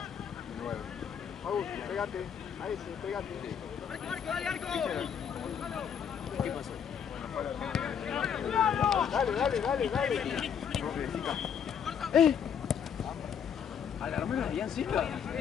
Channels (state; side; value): quieter; right; 7.8 dB